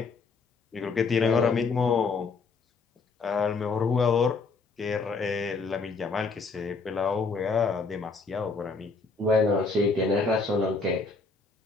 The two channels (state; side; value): quieter; right; 4.3 dB